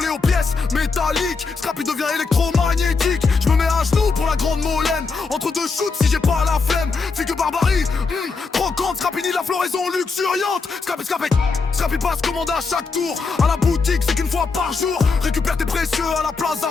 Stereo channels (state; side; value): quieter; right; 4.5 dB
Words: aux pièces métalliques. Scrappy devient électromagnétique. Je me mets à genoux pour la grande molène. Entre deux shoots si j'ai pas la flemme. Figue barbarie, croquante. Scrappy ni la floraison luxuriante. Scrappy passe commande à chaque tour. À la boutique c'est qu'une fois par jour. Récupère tes précieux à la Plaza